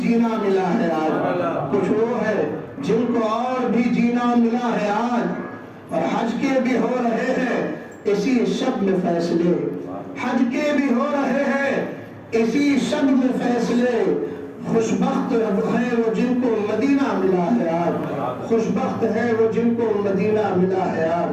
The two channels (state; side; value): identical; both; correlation 1.00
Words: ملا ہے آج، کچھ وہ ہے جن کو اور بھی جینا ملا ہے آج۔ اور حج کے بھی ہو رہے ہیں اسی شب میں فیصلے، حج کے بھی ہو رہے ہیں اسی شب میں فیصلے۔ خوش بخت ہے وہ جن کو مدینہ ملا ہے آج، خوش بخت ہے وہ جن کو مدینہ ملا ہے